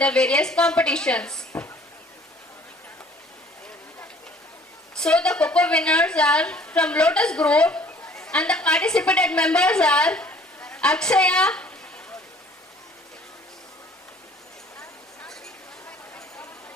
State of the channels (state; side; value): normal; both; correlation 0.54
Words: various competitions. So the Coco winners are from Lotus Group and the participated members are Akshaya,